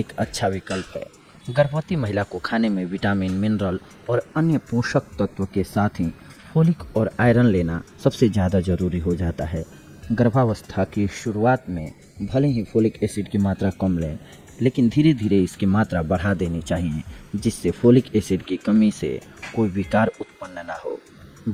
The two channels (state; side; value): identical; both; correlation 1.00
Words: अच्छा विकल्प है। गर्भवती महिला को खाने में विटामिन, मिनरल और अन्य पोषक तत्व के साथ ही फोलिक और आयरन लेना सबसे ज़्यादा ज़रूरी हो जाता है। गर्भावस्था की शुरुआत में भले ही फोलिक एसिड की मात्रा कम लें, लेकिन धीरे धीरे इसकी मात्रा बढ़ा देनी चाहिए, जिससे फोलिक एसिड की कमी से कोई विकार उत्पन्न न हो।